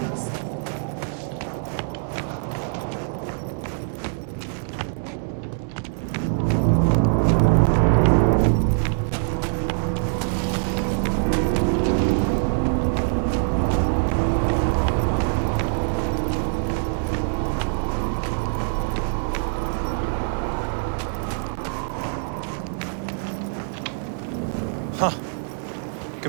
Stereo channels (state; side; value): silent; left; 63 dB below the other